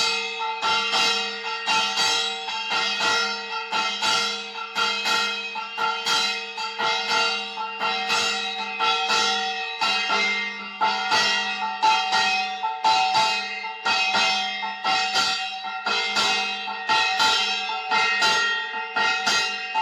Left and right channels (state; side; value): identical; both; correlation 1.00